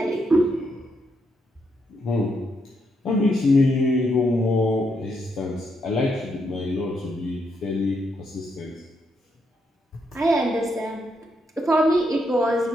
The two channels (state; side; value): normal; both; correlation 0.79